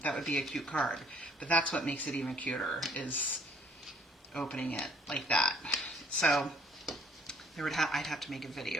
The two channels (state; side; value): normal; both; correlation 0.60